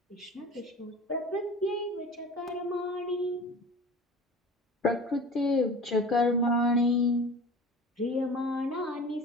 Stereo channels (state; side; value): normal; both; correlation 0.38